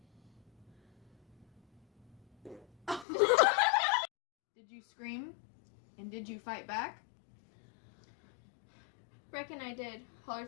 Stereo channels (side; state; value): right; drops out; at 3.1 s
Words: Did you scream? And did you fight back? Reckon I did.